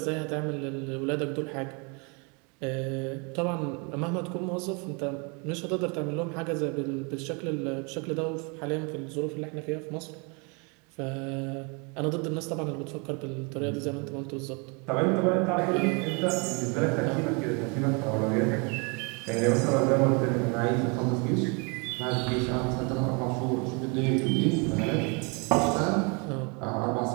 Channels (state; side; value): quieter; left; 32.4 dB